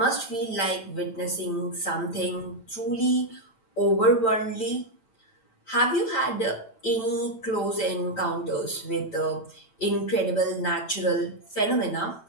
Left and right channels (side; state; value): right; late; 9.0 ms